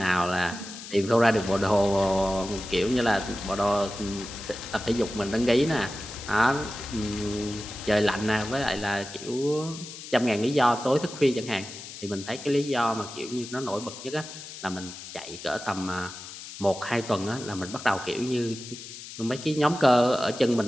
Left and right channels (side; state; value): left; noise; hiss, 12 dB below the sound